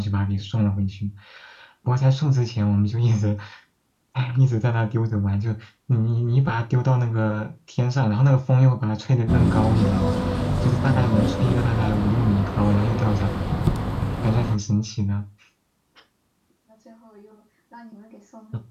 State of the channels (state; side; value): identical; both; correlation 1.00